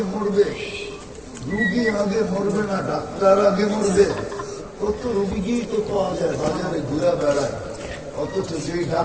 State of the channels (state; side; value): identical; both; correlation 1.00